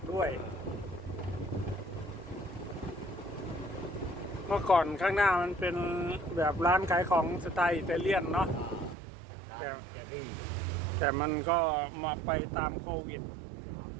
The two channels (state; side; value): drops out; left; at 9.0 s